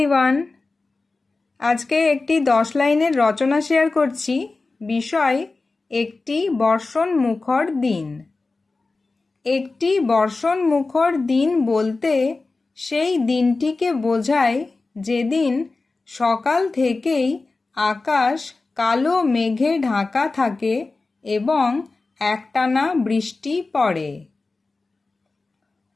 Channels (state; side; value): quieter; right; 3.6 dB